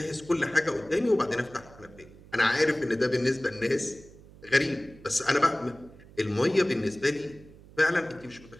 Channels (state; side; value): noise; right; hum, 22 dB below the sound